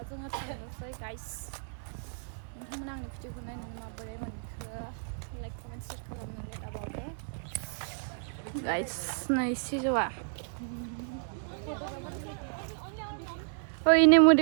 जोङो थांनोसै गाइस नोंथांमोना आंनि भिडिअखौ नायनानै माबोरै मोनखो लाइक कमेन्ट शेयार खालामनो दाबावदो गाइस नै सिजौआ ओइ नै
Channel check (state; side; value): silent; left; digital silence